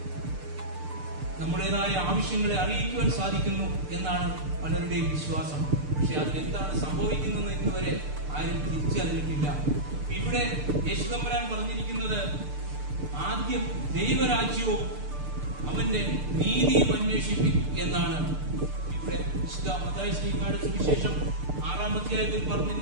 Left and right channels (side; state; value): left; late; 6.7 ms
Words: നമ്മുടേതായ ആവശ്യങ്ങളെ അറിയിക്കുവാൻ സാധിക്കുന്നു എന്നാണ് പലരുടെയും വിശ്വാസം. പക്ഷെ അതിലെന്താണ് സംഭവിക്കുന്നതെന്ന് ഇന്നുവരെ ആരും തിരിച്ചറിഞ്ഞിട്ടില്ല. ഇവിടെ യേശുതമ്പുരാൻ പറഞ്ഞിരിക്കുന്നത് ആദ്യം ദൈവരാജ്യവും അവന്റെ നീതിയും അന്വേഷിപ്പിക്കും എന്നാണ്. ഇവിടെ വിശുദ്ധ മത്തായി ശ്ലീഹായുടെ സുവിശേഷം 6-ാം അധ്യായത്തിൽ